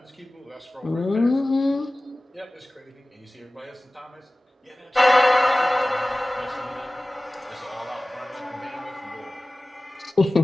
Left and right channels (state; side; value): normal; both; correlation 0.98